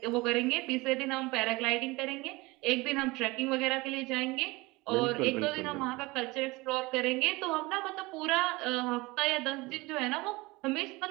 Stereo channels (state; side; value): quieter; left; 22.6 dB